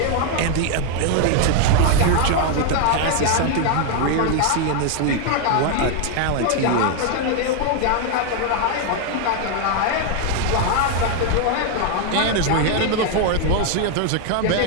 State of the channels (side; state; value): both; different; correlation 0.01